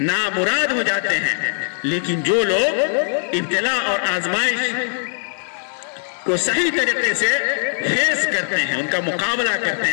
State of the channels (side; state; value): right; silent; digital silence